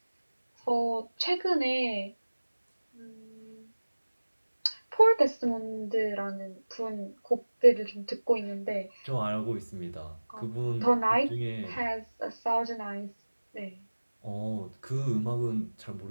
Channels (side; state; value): both; inverted; correlation -1.00